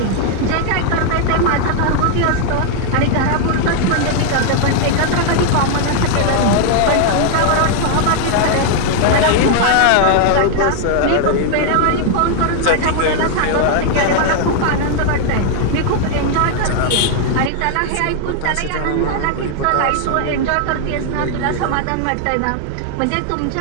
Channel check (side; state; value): both; different; correlation 0.00